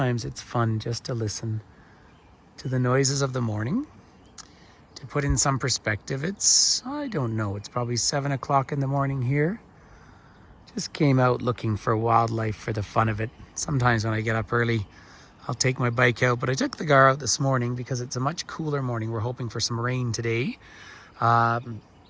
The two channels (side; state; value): both; identical; correlation 1.00